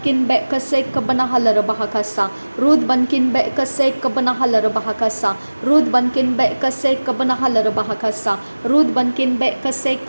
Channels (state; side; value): inverted; both; correlation -1.00